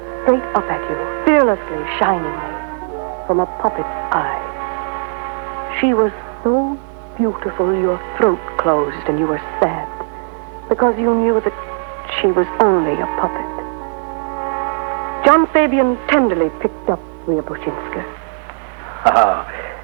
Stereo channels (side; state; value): left; silent; digital silence